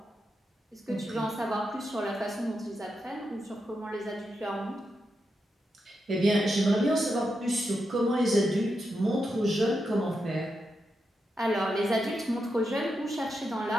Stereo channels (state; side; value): normal; both; correlation 0.86